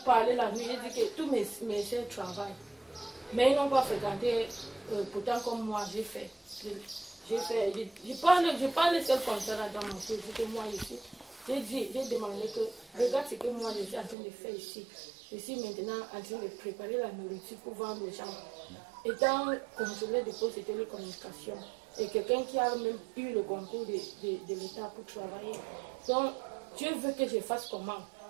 parlé la nuit, j'ai dit que tous mes soeurs travaillent. Mais ils n'ont pas fréquenté, pourtant comme moi, j'ai fait. Je parle seul comme ça là dans mon cœur, que moi ici. J'ai demandé que, regarde ce que moi je suis en train de faire ici. Je suis maintenant en train de préparer la nourriture pour vendre aux gens. Étant contrôleur de poste de télécommunication, et quelqu'un qui a même eu le concours de l'État pour travailler. Donc, Dieu veut que je fasse comment?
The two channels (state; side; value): drops out; left; at 14.2 s